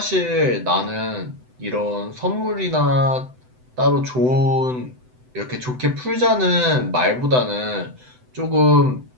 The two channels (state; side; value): late; left; 7.9 ms